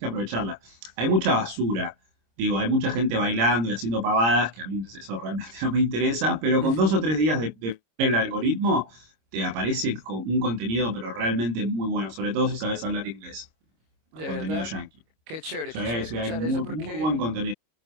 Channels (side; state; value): left; late; 26 ms